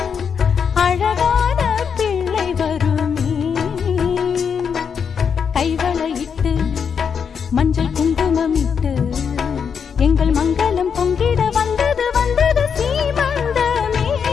அழகான பிள்ளை வருமே. கைவளையிட்டு மஞ்சள் குங்குமமிட்டு எங்கள் மங்களம் பொங்கிட வந்தது வந்தது சீமந்தமே.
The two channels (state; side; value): quieter; right; 6.8 dB